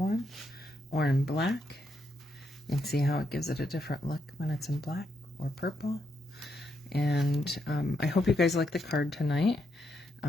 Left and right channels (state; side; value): normal; both; correlation 0.79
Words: or in black. You can see how it gives it a different look when it's in black or purple. And I hope you guys like the card tonight.